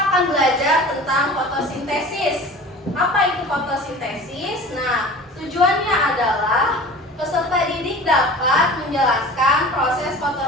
belajar tentang fotosintesis. Apa itu fotosintesis? Nah, tujuannya adalah peserta didik dapat menjelaskan proses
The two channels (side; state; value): both; normal; correlation 0.40